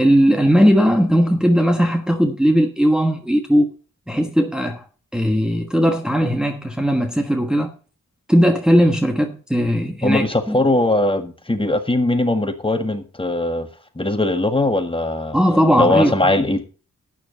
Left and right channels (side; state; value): both; normal; correlation 0.85